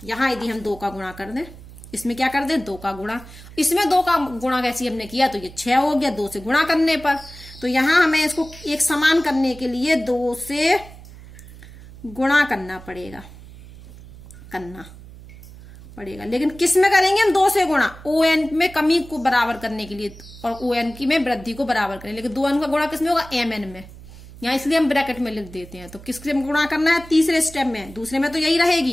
यहाँ यदि हम 2 का गुणा कर दें इसमें क्या कर दे 2 का गुणा, इसमें 2 का गुणा कैसे हमने किया तो ये 6 हो गया 2 से गुणा करने पर। तो यहां हमें इसको एक समान करने के लिए 2 से गुणा करना पड़ेगा, लेकिन किस में करेंगे हम 2 से गुणा, ON में कमी को बराबर करने के लिए और ON की में वृद्धि को बराबर करें, लेकिन 2n का गुणा किस में होगा MN में, यहाँ इसलिए हम ब्रैकेट में लिख देते हैं। तो किससे गुणा करना है, तीसरे स्टेप में, दूसरे में तो यही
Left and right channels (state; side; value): noise; right; hum, 18 dB below the sound